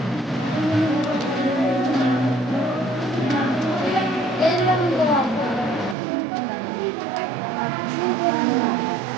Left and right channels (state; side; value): drops out; left; at 6.0 s